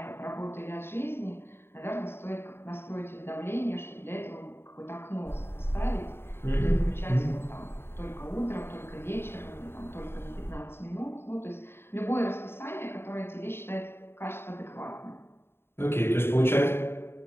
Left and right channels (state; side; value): late; right; 0.11 ms